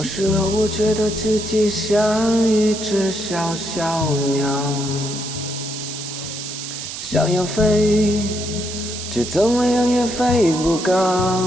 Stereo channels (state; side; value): noise; right; hiss, 8 dB below the sound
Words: 时候我觉得自己像一只小小鸟，想要飞，却怎么样也飞不高。